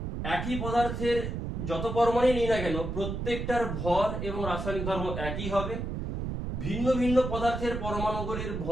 একই পদার্থের যত পরমাণুই নিই না কেন, প্রত্যেকটার ভর এবং রাসায়নিক ধর্ম একই হবে। ভিন্ন ভিন্ন পদার্থের পরমাণুগুলির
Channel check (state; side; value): noise; right; rumble, 4 dB below the sound